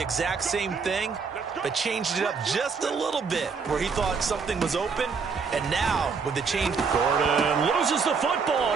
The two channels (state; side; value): quieter; left; 5.3 dB